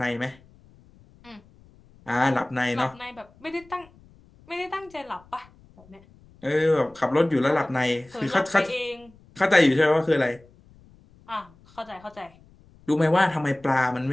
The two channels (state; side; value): noise; left; rumble, 27 dB below the sound